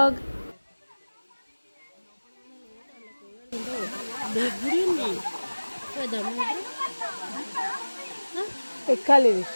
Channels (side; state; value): both; inverted; correlation -1.00